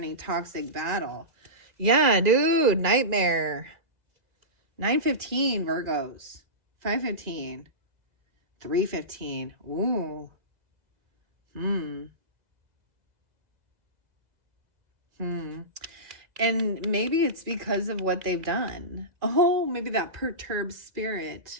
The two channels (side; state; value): left; late; 2.0 ms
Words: toxic battle. Yeah, dude, nightmare. 9-15, Virgos. 5-15. 3-15. Ooh. And maybe it's because of what they've done. Oh, maybe that perturbed spirit.